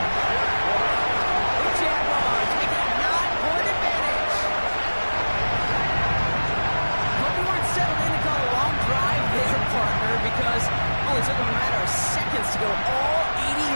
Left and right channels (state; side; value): inverted; both; correlation -1.00